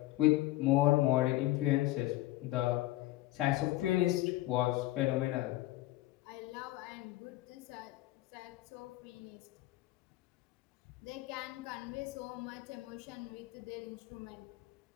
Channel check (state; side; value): quieter; right; 17.0 dB